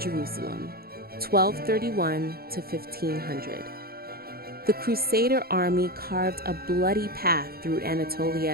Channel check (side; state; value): left; late; 0.44 ms